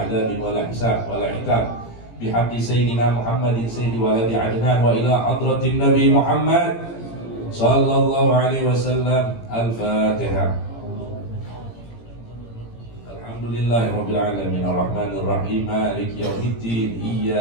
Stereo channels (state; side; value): late; right; 17 ms